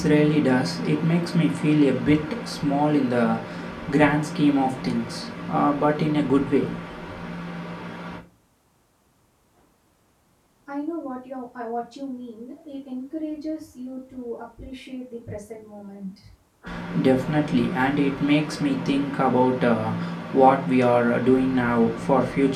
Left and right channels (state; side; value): identical; both; correlation 1.00